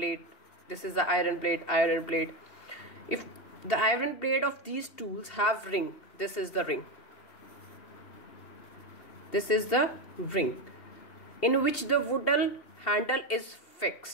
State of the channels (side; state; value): right; late; 2.7 ms